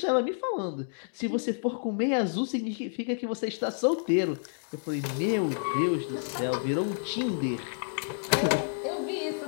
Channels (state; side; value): silent; right; digital silence